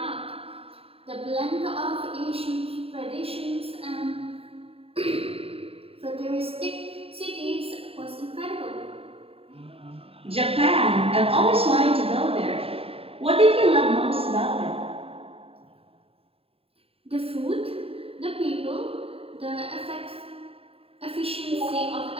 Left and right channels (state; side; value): late; left; 0.28 ms